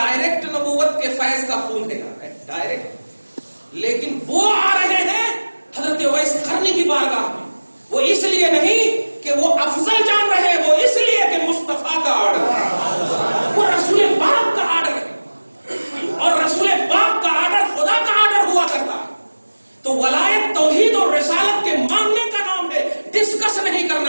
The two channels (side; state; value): both; inverted; correlation -1.00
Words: نبوت کے فیض کا خون ہے ڈائریکٹ. لیکن وہ آ رہے ہیں حضرت اویس قرنی کی بارگاہ میں، وہ اس لیے نہیں کہ وہ افضل جان رہے، وہ اس لیے کہ مصطفیٰ کا آرڈر ہے، وہ رسول پاک کا آرڈر ہے، اور رسول پاک کا آرڈر خدا کا آرڈر ہوا کرتا ہے. تو ولایت توحید اور رسالت کے ماننے کا نام ہے، ڈسکس نہیں